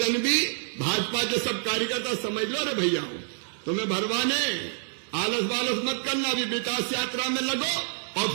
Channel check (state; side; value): silent; left; digital silence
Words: भी भाजपा के सब कार्यकर्ता समझ लो रे भैया, तुम्हें भरवाने आलस बालस मत करना, अभी विकास यात्रा में लगो और